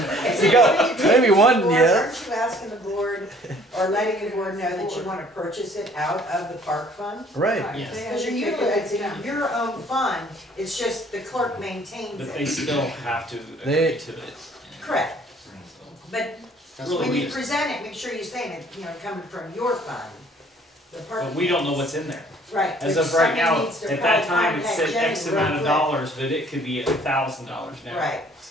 Is You it got- what you maybe take one, to the board? yeah. Aren't you asking the board, or letting the board know that you wanna purchase it out of the park fund? Right. Yes. They Because have you're to take it utilizing down. your own fund, it's just the clerk maintains But they it. still have to They- agree to it. Correct, So, but That's Really, when we you just- present it, make sure you're saying it, you know, coming from your fund. The park. But we don't know what's in there. Right. As but of right somebody now, needs to at that probably time, it contact said Jenny X real amount of quick. dollars, but it could be $1,000 now. Right,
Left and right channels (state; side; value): normal; both; correlation 0.57